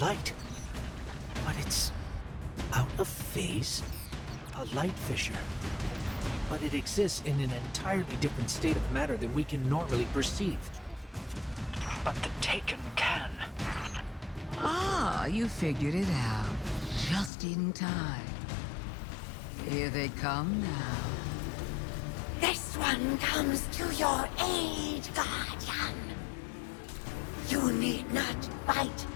light. But it's out of phase? A light fissure. But it exists in an entirely different state of matter than we can normally perceive. But the Taken can. Ah, you figured it out. Just in time. Here they come now. This one comes to your aid, Guardian. You need not fight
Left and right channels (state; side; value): drops out; right; at 17.3 s